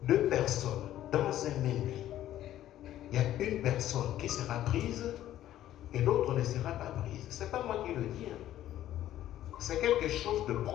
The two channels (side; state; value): right; quieter; 12.8 dB